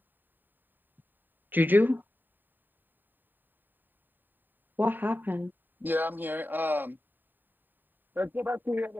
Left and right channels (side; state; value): left; late; 0.091 ms